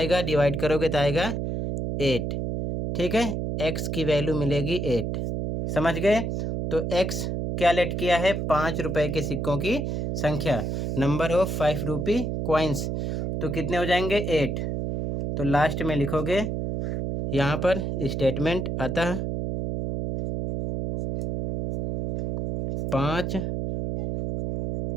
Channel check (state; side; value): noise; right; hum, 1 dB below the sound